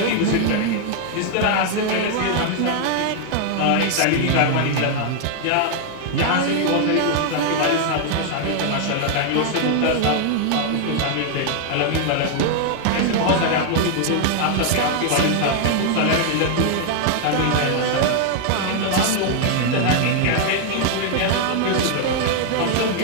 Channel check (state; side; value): different; both; correlation 0.00